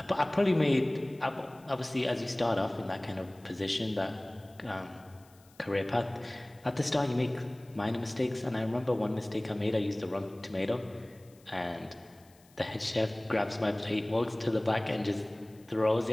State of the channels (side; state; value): left; noise; hiss, 29 dB below the sound